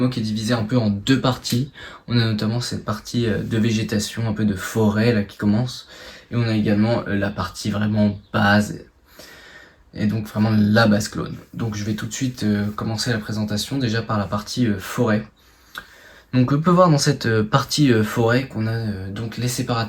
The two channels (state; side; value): identical; both; correlation 1.00